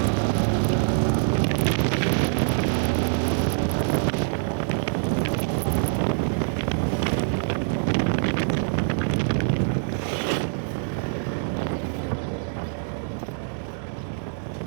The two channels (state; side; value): silent; left; digital silence